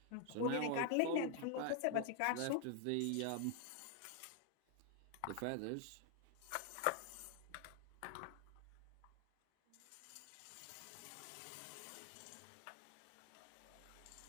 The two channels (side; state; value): both; different; correlation 0.00